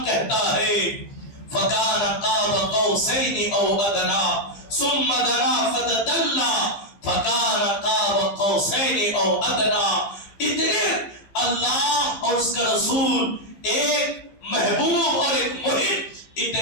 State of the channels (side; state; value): right; late; 15 ms